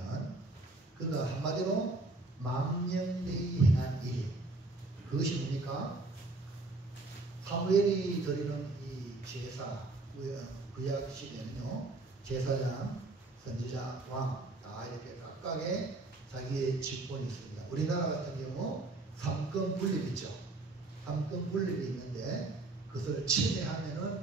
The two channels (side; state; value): left; quieter; 3.2 dB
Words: 그가 한마디로 망령되이 행한 일, 그것이 뭡니까? 사무엘이 드리는 이 제사, 구약 시대는요 제사장, 선지자, 왕 다 이렇게 각각의 자기의 직분이 있습니다. 우리나라 같은 경우 삼권 분립 있죠. 삼권 분립이 있는데 그것을